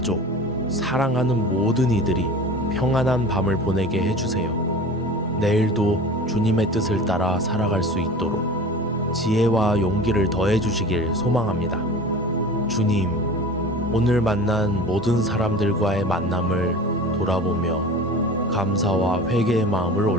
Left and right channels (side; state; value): both; normal; correlation 0.37